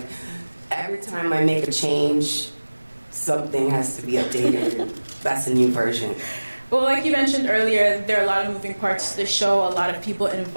every time I make a change, something has to be updated. That's a new version. Well, like you mentioned earlier, there are a lot of moving parts to the show, a lot of people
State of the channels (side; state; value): both; inverted; correlation -1.00